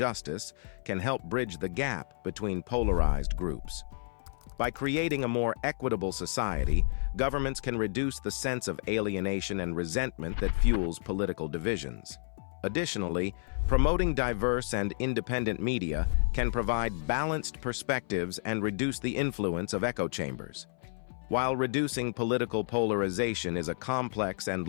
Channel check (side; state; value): right; silent; 57 dB below the other